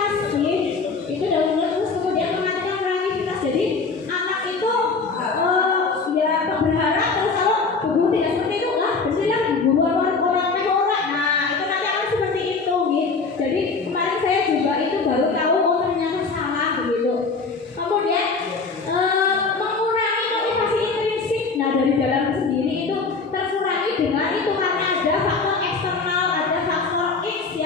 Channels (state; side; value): quieter; right; 4.4 dB